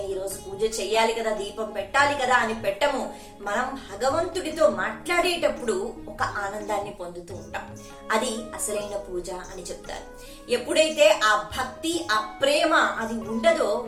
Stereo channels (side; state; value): both; identical; correlation 1.00